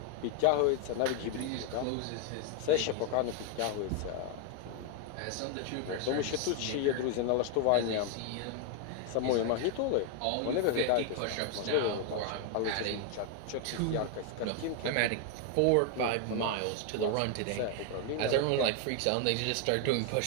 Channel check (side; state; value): both; different; correlation 0.00